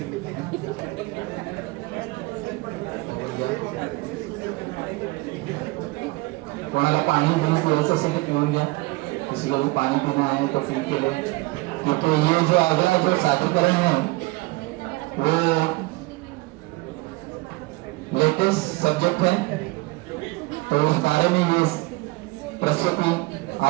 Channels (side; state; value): left; quieter; 22.9 dB